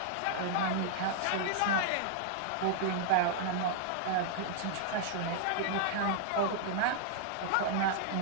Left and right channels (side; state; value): both; different; correlation -0.01